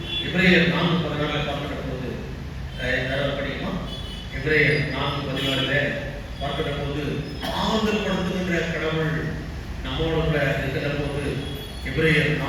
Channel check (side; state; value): both; identical; correlation 1.00